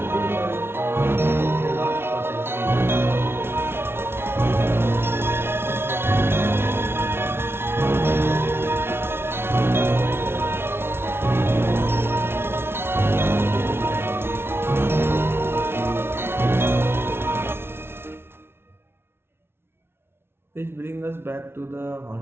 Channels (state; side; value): late; left; 0.12 ms